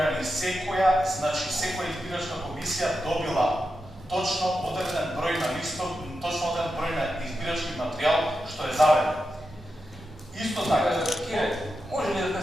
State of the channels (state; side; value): normal; both; correlation 0.88